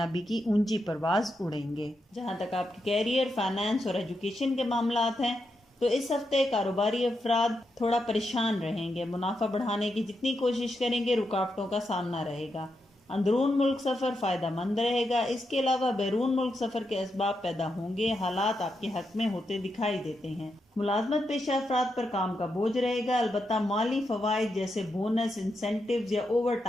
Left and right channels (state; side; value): normal; both; correlation 0.84